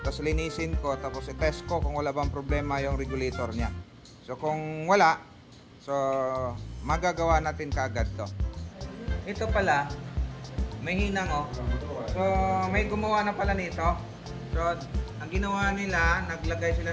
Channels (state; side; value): identical; both; correlation 1.00